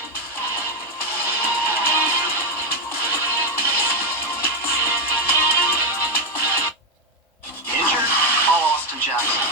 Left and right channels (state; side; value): normal; both; correlation 0.06